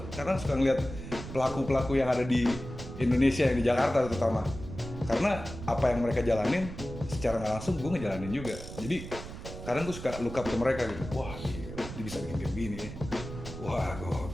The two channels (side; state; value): right; noise; rumble, 10 dB below the sound